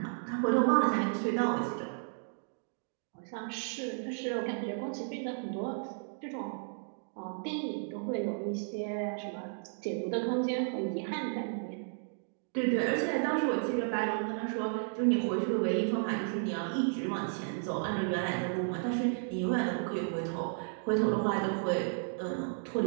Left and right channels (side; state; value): left; silent; digital silence